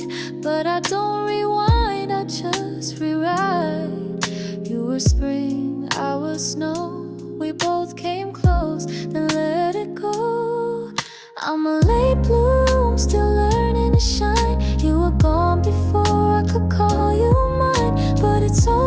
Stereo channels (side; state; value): both; identical; correlation 1.00